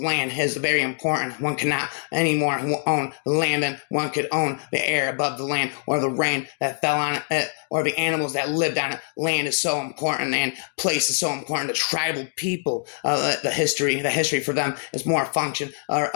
is very important. One cannot anymore own the land, and one could own the air above the land, or the rain that fell on it, or the animals that lived on it. Land is so important, and place is so important to tribal people. The history for them is more a function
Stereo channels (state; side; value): silent; right; digital silence